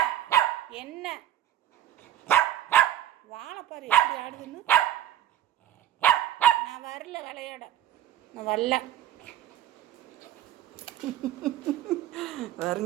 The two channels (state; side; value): quieter; left; 12.0 dB